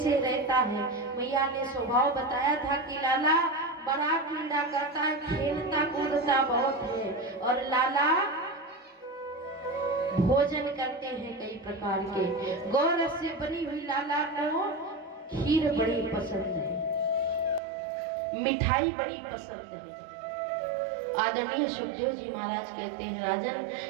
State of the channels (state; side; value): drops out; left; at 17.6 s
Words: रहता है? मैया ने स्वभाव बताया था कि लाला बड़ा क्रीड़ा करता है, खेलता कूदता बहुत है और लाला भोजन करते हैं कई प्रकार के। गौरस से बनी हुई लाला को खीर बड़ी पसंद है, मिठाई बड़ी पसंद है। आदरणीय सुखदेव जी महाराज कहते हैं राजन,